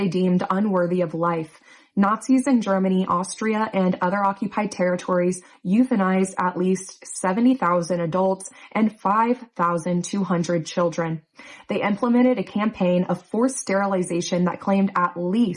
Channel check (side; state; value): both; identical; correlation 1.00